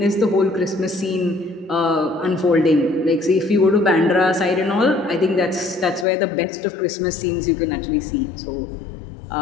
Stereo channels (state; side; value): drops out; right; at 6.1 s